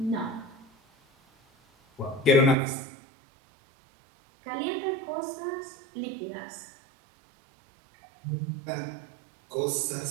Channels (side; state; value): left; drops out; at 2.6 s